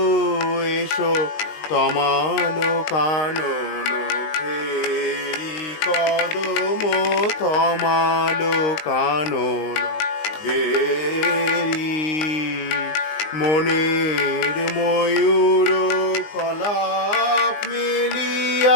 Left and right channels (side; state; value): right; late; 19 ms